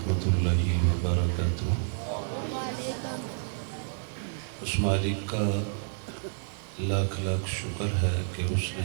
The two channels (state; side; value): silent; left; digital silence